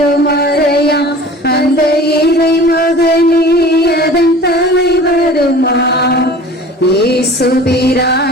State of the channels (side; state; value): both; normal; correlation 0.42